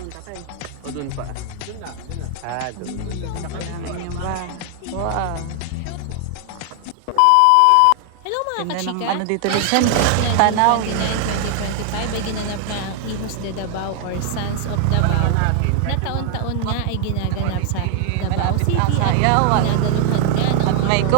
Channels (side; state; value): both; different; correlation 0.00